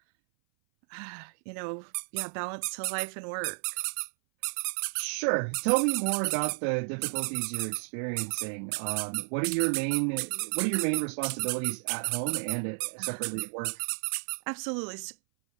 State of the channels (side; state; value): left; silent; 57 dB below the other